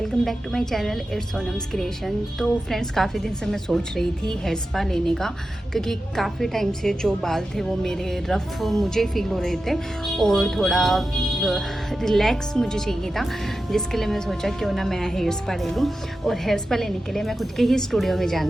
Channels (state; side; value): normal; both; correlation 0.92